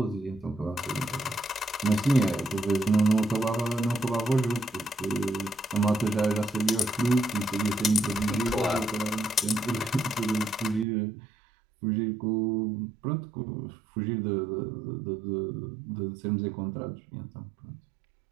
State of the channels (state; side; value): drops out; left; at 10.9 s